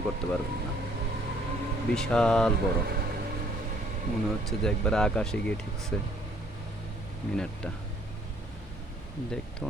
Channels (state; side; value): normal; both; correlation 0.61